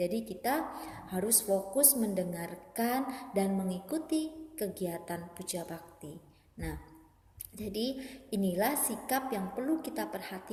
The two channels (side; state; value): both; identical; correlation 1.00